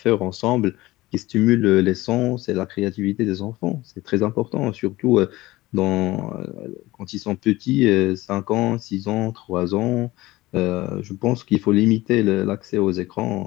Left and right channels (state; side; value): quieter; right; 18.7 dB